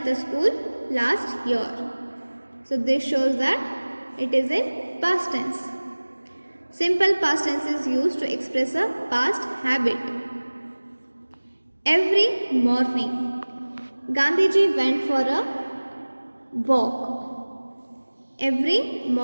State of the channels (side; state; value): both; inverted; correlation -1.00